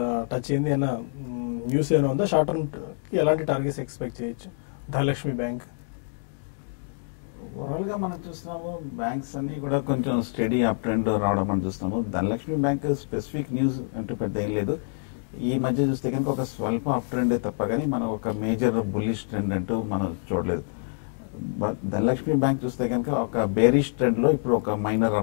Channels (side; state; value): right; silent; digital silence